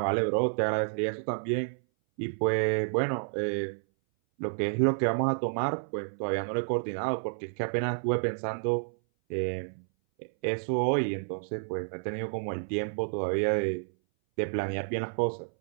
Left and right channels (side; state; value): left; silent; 58 dB below the other